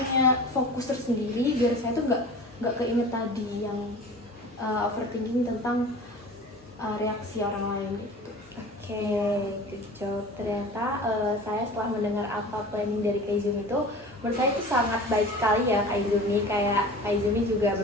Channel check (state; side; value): normal; both; correlation 0.39